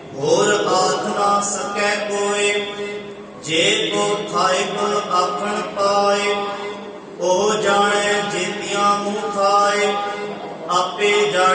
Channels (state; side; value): identical; both; correlation 1.00